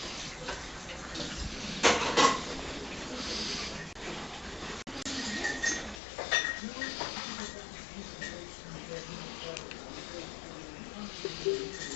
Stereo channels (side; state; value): right; drops out; at 6.0 s